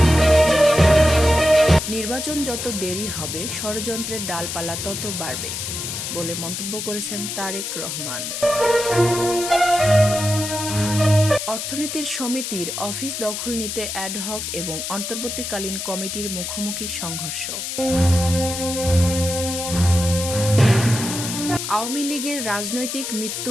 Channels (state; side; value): noise; left; hiss, 5 dB below the sound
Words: নির্বাচন যত দেরি হবে ষড়যন্ত্রের ডালপালা তত বাড়বে বলে মন্তব্য করেছেন তারেক রহমান। অর্থনীতির সমিতির অফিস দখল নিতে অ্যাডহক এবং অন্তর্বর্তীকালীন কমিটির মুখোমুখি সংঘর্ষ। আওয়ামী লীগের রাজনৈতিক মৃত্যু